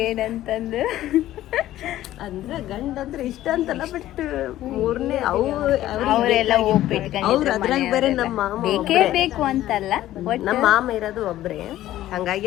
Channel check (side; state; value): right; quieter; 14.0 dB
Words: ಏನಂತಂದು. ಅಂದ್ರ ಗಂಡ ಅಂದ್ರೆ ಇಷ್ಟ ಅಂತಲ್ಲ, ಬಟ್ ಮೂರನೇ ಅವರೆಲ್ಲ ಅವ್ರು ಅದ್ರಾಗ ಬೇರೆ ನಮ್ಮ ಮಾಮ ಬೇಕೇ ಬೇಕು ಅಂತಲ್ಲ, ನಮ್ಮ ಮಾಮ ಇರೋದು ಒಬ್ರೇ. ಹಂಗಾಗಿ